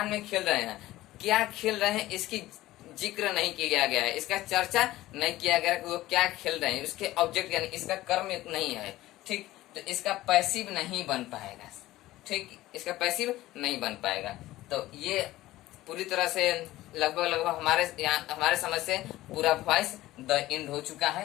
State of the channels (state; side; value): quieter; right; 16.4 dB